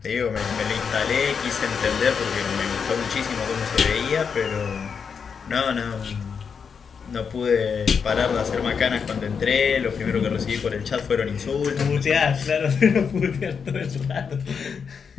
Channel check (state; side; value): quieter; right; 6.3 dB